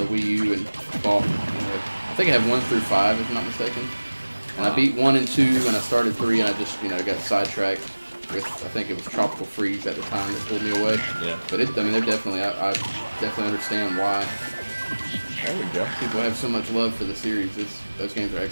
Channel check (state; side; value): inverted; both; correlation -1.00